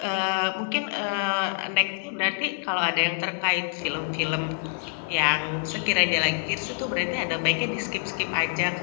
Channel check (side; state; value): right; silent; digital silence